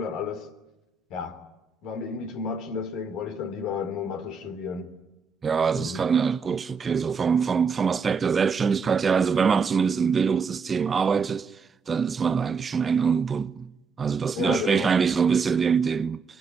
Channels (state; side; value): quieter; left; 5.1 dB